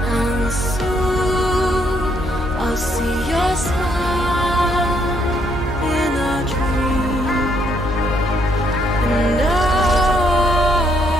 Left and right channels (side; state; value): both; normal; correlation 0.71